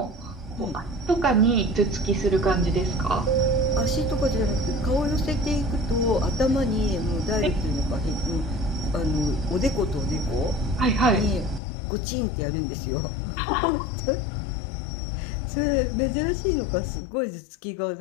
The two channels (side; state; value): right; drops out; at 11.6 s